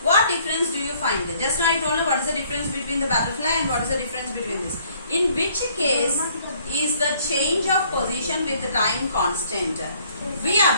what difference do you find? Just now I told you what is the difference between the butterfly and what is the difference between this. In which case is the change of position with the time constant? We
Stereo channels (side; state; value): both; inverted; correlation -0.62